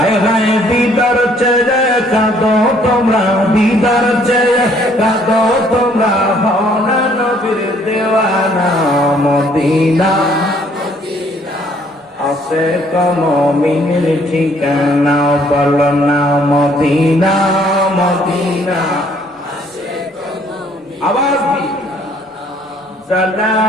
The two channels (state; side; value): normal; both; correlation 0.63